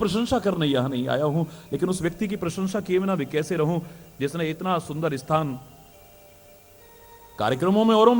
करने यहां नहीं आया हूं, लेकिन उस व्यक्ति की प्रशंसा किए बिना भी कैसे रहूं जिसने इतना सुंदर स्थान, कार्यक्रमों में औरों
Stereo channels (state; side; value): identical; both; correlation 1.00